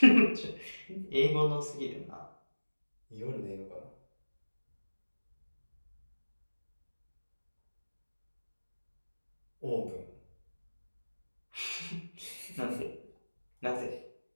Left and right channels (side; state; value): both; inverted; correlation -1.00